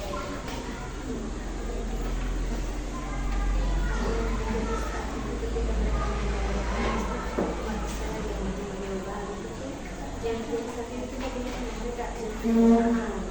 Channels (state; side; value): identical; both; correlation 1.00